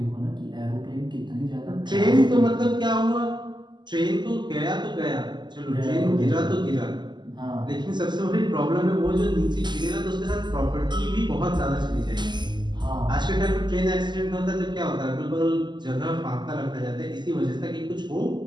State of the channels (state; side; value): late; left; 0.21 ms